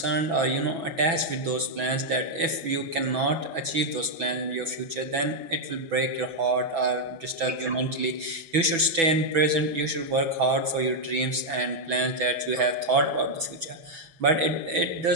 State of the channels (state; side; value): late; left; 6.1 ms